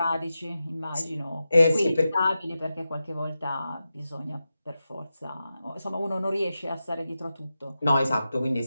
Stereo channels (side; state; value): both; inverted; correlation -0.91